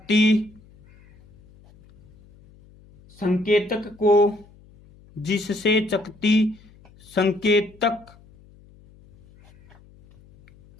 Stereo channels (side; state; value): left; noise; hum, 27 dB below the sound